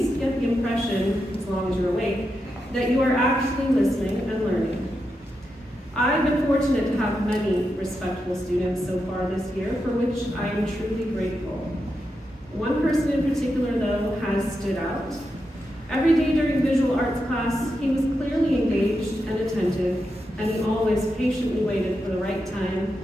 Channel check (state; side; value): normal; both; correlation 0.86